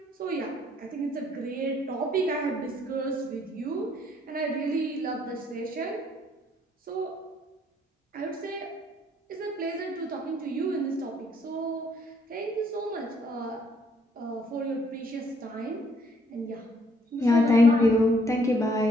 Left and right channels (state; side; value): normal; both; correlation 0.66